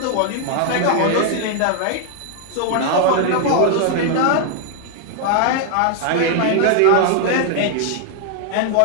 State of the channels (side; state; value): both; different; correlation 0.00